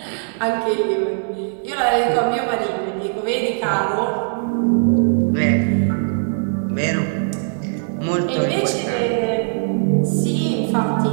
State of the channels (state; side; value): silent; left; digital silence